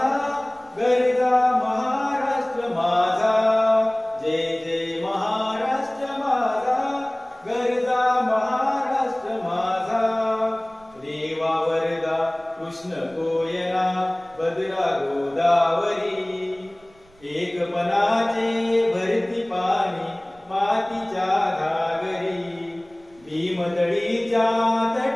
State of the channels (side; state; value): right; noise; rumble, 29 dB below the sound